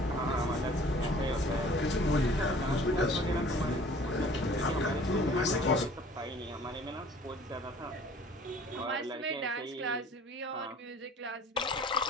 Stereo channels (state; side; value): normal; both; correlation 0.51